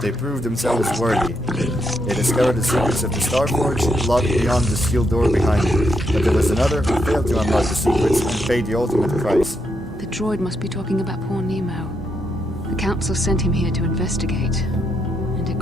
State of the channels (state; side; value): normal; both; correlation 0.79